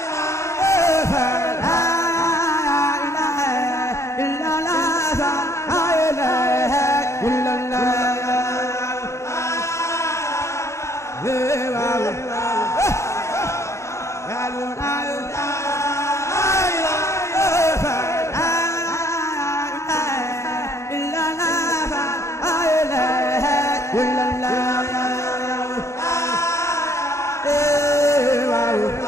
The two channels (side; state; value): right; late; 0.14 ms